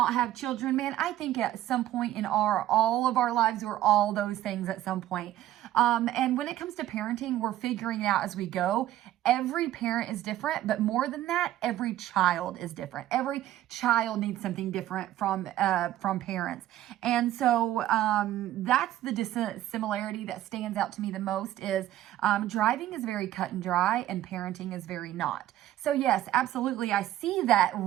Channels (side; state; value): left; quieter; 13.5 dB